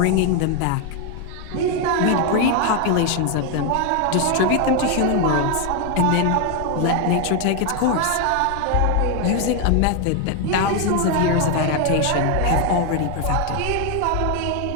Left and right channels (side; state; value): both; different; correlation 0.01